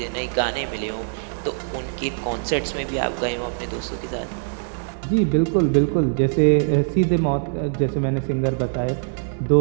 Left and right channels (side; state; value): left; silent; digital silence